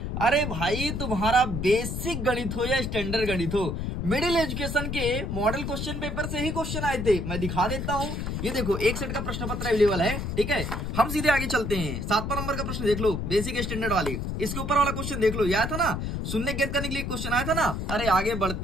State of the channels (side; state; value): left; noise; rumble, 3 dB below the sound